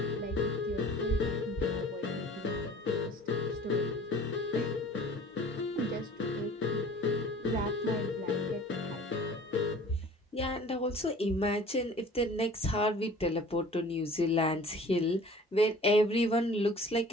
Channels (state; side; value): normal; both; correlation 0.47